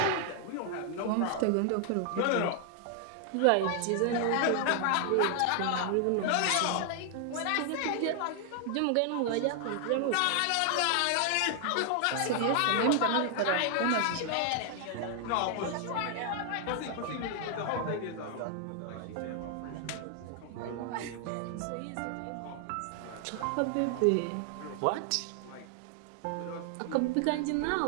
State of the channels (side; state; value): both; different; correlation 0.00